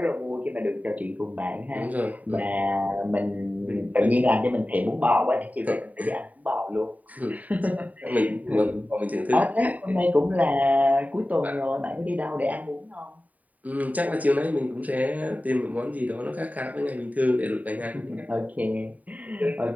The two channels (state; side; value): late; left; 0.073 ms